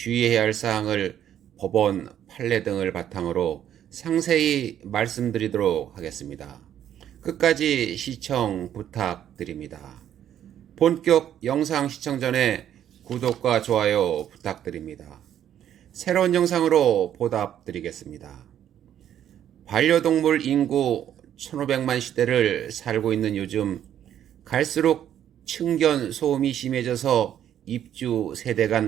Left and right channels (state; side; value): quieter; left; 10.4 dB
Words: 할 사항을 법원 판례 등을 바탕으로 상세히 말씀드리도록 하겠습니다. 끝까지 시청 부탁드립니다. 본격 영상 시청 전에 구독과 좋아요 부탁드립니다. 새로운 영상으로 보답드리겠습니다. 반려동물 인구 1500만 시대를 살고 있는 요즘 갈수록 층견 소음이 심해져서 입주 세대